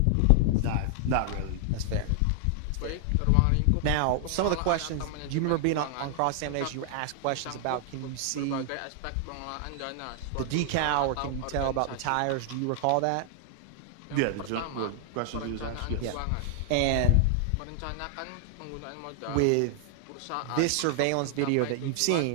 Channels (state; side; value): different; both; correlation -0.01